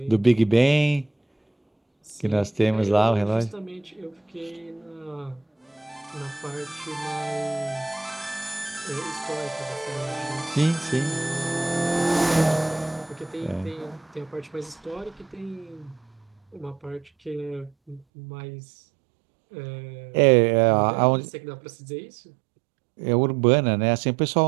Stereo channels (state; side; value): drops out; left; at 18.1 s